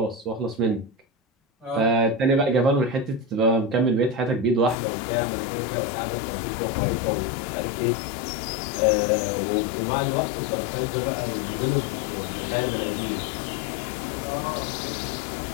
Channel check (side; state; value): right; drops out; at 4.8 s